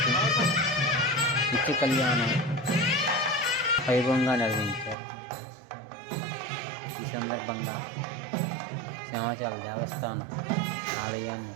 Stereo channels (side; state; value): left; drops out; at 5.0 s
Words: నిత్య కళ్యాణం వైభవంగా నిర్వహించారు. ఈ సందర్భంగా సింహాచల దేవస్థానం ఆలయాన్ని